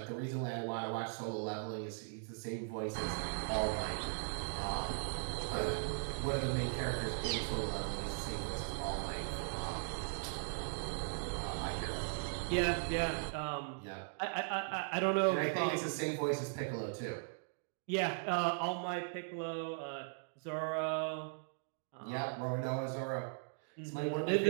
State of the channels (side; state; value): left; silent; digital silence